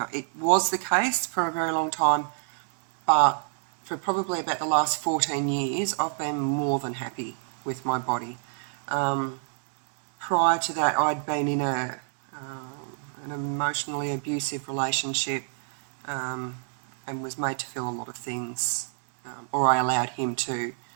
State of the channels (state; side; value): silent; left; digital silence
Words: it was the case for a very long time, but for probably about the last 14 years, I've been more than happy with my body. Prior to that, I'd been in an emotionally abusive relationship and was made to feel a lot of things, or I allowed him to